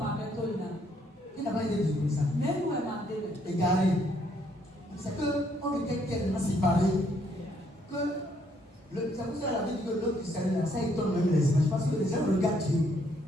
Il n'a pas été désobéissant. Égaré. C'est qu'on était tellement séparés que c'est pour ça que la vie dit que l'autre du salut là, ça étonne même les images. Parce que les gens regardent Dieu.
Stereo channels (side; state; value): both; normal; correlation 0.69